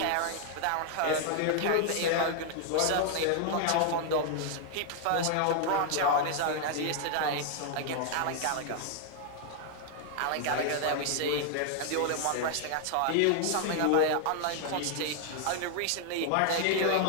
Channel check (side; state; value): both; different; correlation 0.00